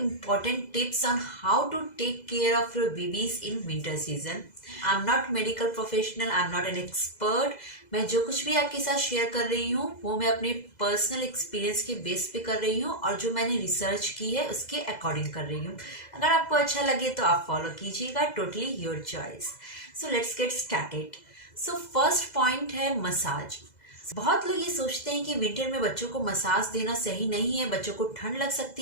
tips on how to take care of your babies in winter season. I am not medical professional, I am not an expert. मैं जो कुछ भी आपके साथ शेयर कर रही हूँ वो मैं अपने पर्सनल एक्सपीरियंस के बेस पे कर रही हूँ और जो मैंने रिसर्च की है उसके अकॉर्डिंग कर रही हूँ। अगर आपको अच्छा लगे तो आप फॉलो कीजिएगा, totally your choice. So let's get started. So first point है मसाज। बहुत लोग ये सोचते हैं कि विंटर में बच्चों को मसाज देना सही नहीं है, बच्चों को ठंड लग सकती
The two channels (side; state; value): right; late; 2.0 ms